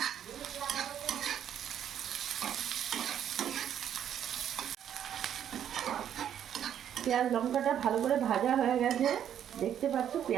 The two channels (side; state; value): left; quieter; 9.7 dB